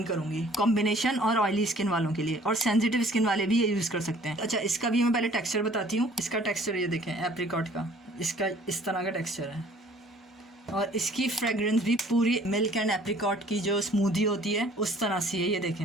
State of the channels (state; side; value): normal; both; correlation 0.55